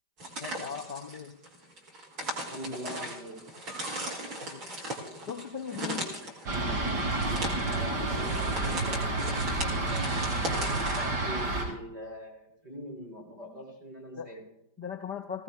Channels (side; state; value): left; late; 5.1 ms